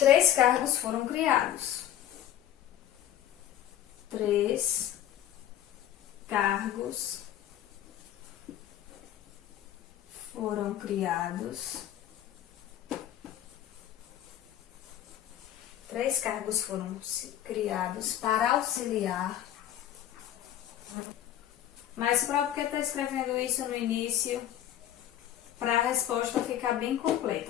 cargos foram criados. 3 cargos foram criados. 3 cargos foram criados para auxiliar. Mas para porque está escrevendo isso no início, para a resposta ficar bem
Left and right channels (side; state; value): right; quieter; 11.8 dB